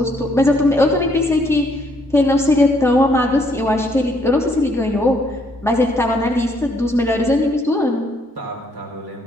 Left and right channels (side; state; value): both; normal; correlation 0.69